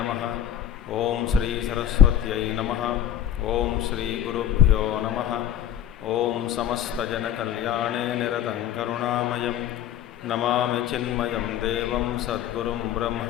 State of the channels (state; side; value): quieter; right; 10.4 dB